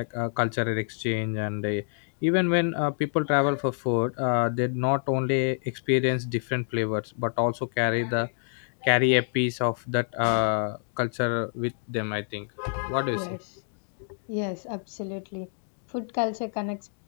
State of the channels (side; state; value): right; silent; digital silence